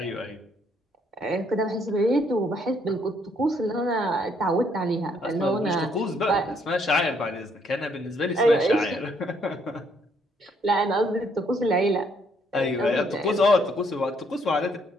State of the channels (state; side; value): normal; both; correlation 0.69